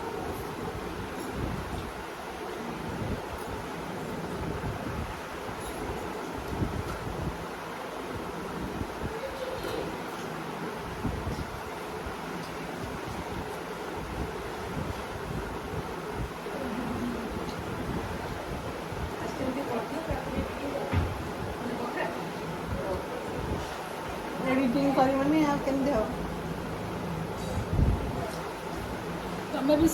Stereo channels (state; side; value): identical; both; correlation 1.00